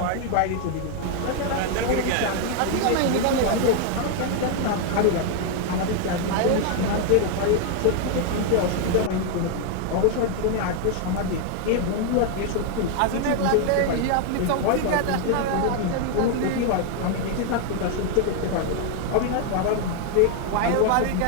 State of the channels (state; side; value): different; both; correlation 0.01